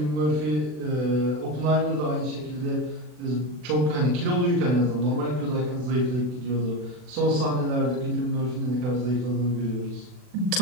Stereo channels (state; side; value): late; left; 40 ms